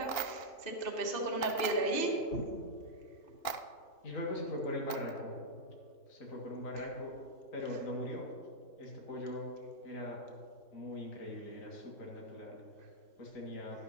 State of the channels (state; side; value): late; right; 2.9 ms